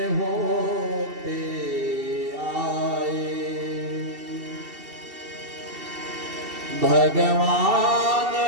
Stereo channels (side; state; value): left; late; 2.7 ms